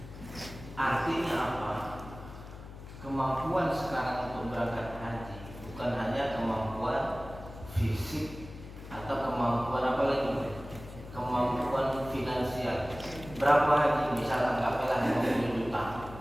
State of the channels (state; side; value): noise; left; hum, 14 dB below the sound